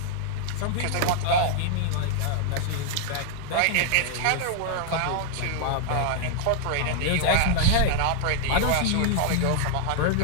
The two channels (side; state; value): both; different; correlation -0.01